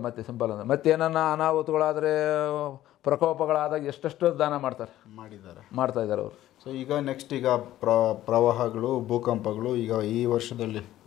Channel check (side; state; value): right; quieter; 13.8 dB